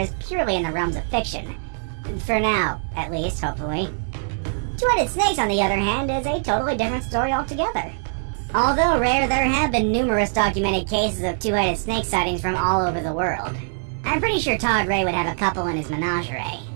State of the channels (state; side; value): silent; left; 63 dB below the other